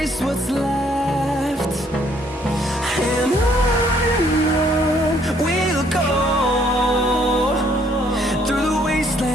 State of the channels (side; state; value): both; normal; correlation 0.65